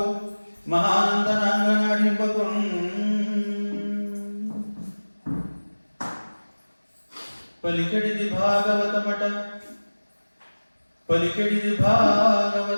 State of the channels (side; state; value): both; inverted; correlation -1.00